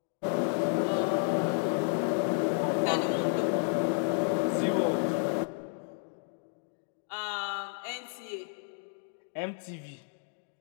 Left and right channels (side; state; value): right; silent; 57 dB below the other